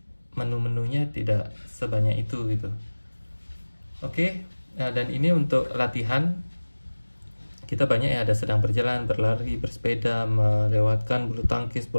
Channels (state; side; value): inverted; both; correlation -1.00